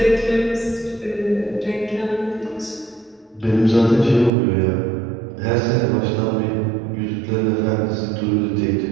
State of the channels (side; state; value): left; drops out; at 4.3 s